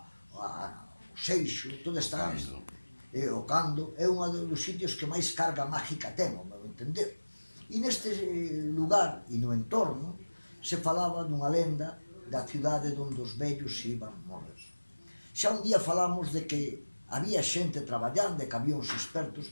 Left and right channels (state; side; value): inverted; both; correlation -1.00